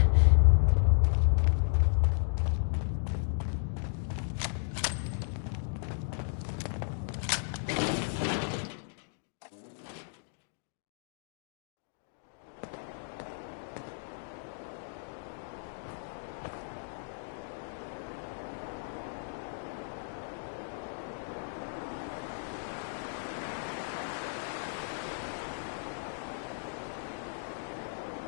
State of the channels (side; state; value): right; silent; digital silence